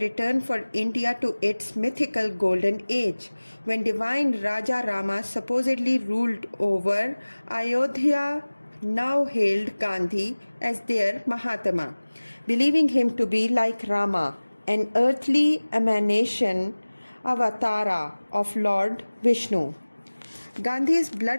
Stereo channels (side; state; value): both; inverted; correlation -1.00